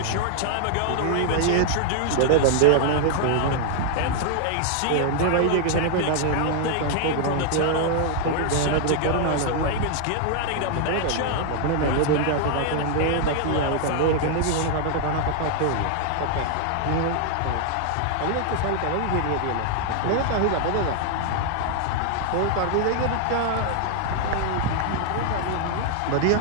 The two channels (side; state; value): both; different; correlation 0.00